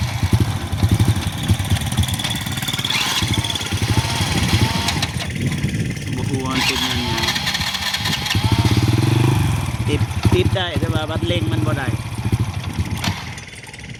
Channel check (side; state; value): both; identical; correlation 1.00